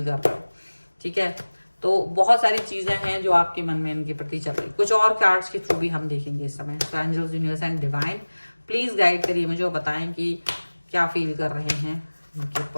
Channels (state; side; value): inverted; both; correlation -1.00